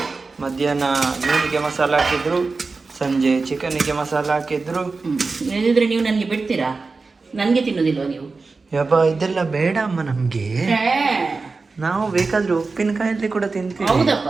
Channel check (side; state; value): left; quieter; 4.1 dB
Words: ಮಧ್ಯಾಹ್ನ ಮೀನಿಗೆ ಮಸಾಲ ಹಾಕಿದ್ರು, ಸಂಜೆ ಚಿಕನ್ನಿಗೆ ಮಸಾಲ ಹಾಕಿದ್ರು. ಇಲ್ಲದಿದ್ರೆ ನೀವು ನನಗೆ ಬಿಡ್ತೀರಾ? ನನಗೆ ತಿನ್ನೋದಿಲ್ವ ನೀವು? ಯಬ್ಬ, ಇದೆಲ್ಲ ಬೇಡ ಅಮ್ಮ ನಮ್ಗೆ. ನಾವು ಬೇಕಾದ್ರೆ ಉಪ್ಪಿನಕಾಯಲ್ಲಿ ಕೂಡ ತಿಂತೀವಿ. ಹೌದಪ್ಪ.